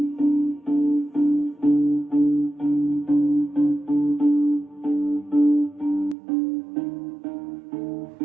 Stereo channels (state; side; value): drops out; left; at 6.2 s